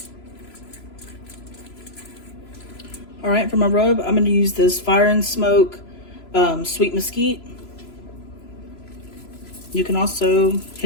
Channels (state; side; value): late; right; 3.0 ms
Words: All right, for my rub, I'm gonna use this Fire and Smoke sweet mesquite. You can also